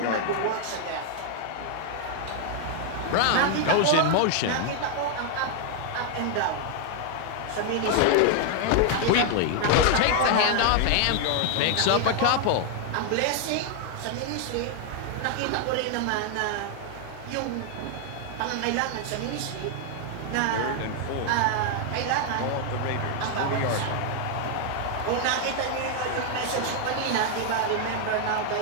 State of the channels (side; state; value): both; different; correlation 0.00